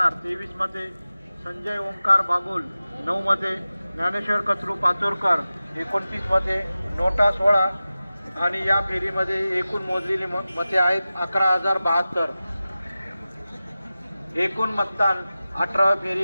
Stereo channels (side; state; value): both; inverted; correlation -0.96